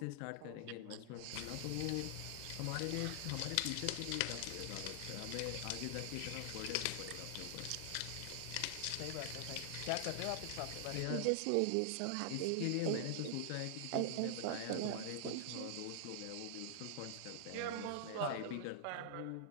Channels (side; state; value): both; different; correlation -0.01